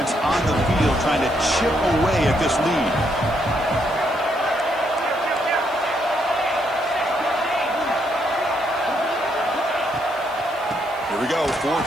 on the field trying to chip away at this lead. Here we go,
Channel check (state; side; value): noise; left; hiss, 25 dB below the sound